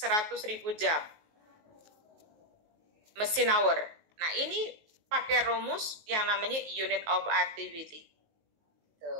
jam mesin hour. Nah, ini pakai rumus yang namanya unit of activity.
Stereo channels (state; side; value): late; left; 19 ms